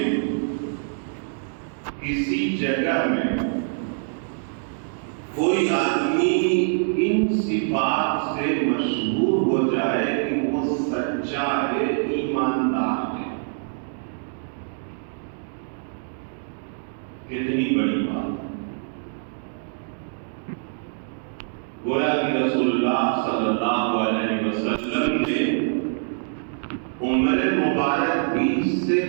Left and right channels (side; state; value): left; silent; 62 dB below the other